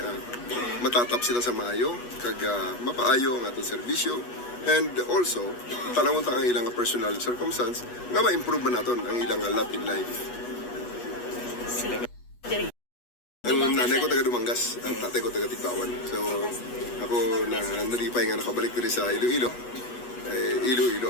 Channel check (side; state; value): right; late; 8.3 ms